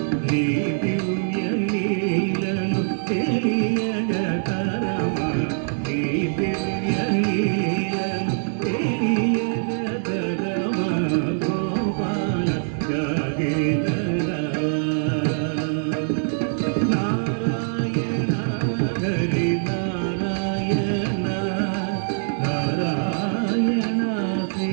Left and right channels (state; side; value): silent; left; digital silence